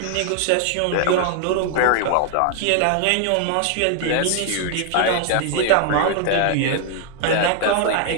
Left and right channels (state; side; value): different; both; correlation 0.00